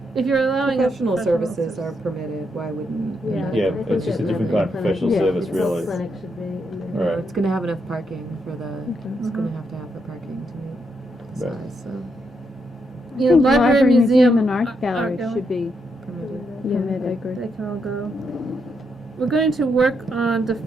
If you're allowing a professional services are permitted, why wouldn't? Yeah. Yeah, I think it's just a that different medical kind of clinic- professional yeah, service, it's really. clinic should be in You there. know, Right. it's gonna have enough parking for the, it's Mhm. gonna have to have the parking to meet the Right. size, so. You know, think library, museum, and art gallery should be Yeah, I permitted. agree. They can all go. We're going to work on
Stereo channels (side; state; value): both; normal; correlation 0.80